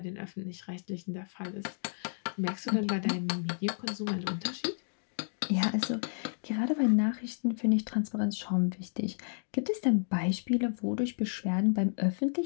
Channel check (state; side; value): silent; right; digital silence